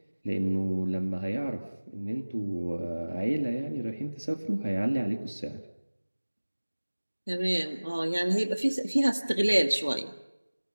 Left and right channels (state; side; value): inverted; both; correlation -1.00